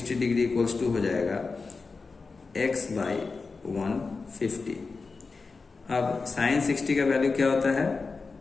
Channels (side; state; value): right; quieter; 4.3 dB